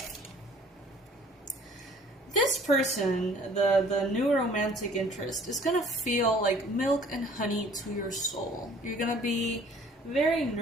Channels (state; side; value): normal; both; correlation 0.53